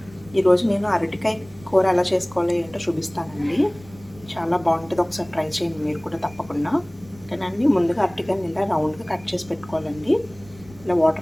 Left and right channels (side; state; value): right; noise; rumble, 22 dB below the sound